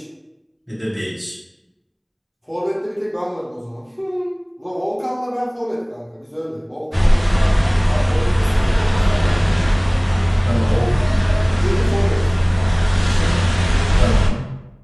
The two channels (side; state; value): both; identical; correlation 1.00